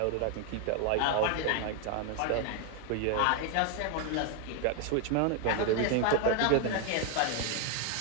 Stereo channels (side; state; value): both; different; correlation 0.01